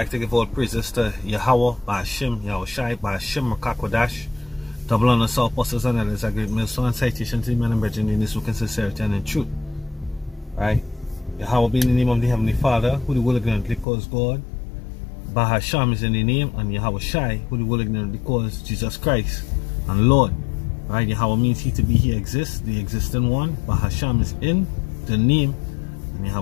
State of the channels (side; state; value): right; drops out; at 13.9 s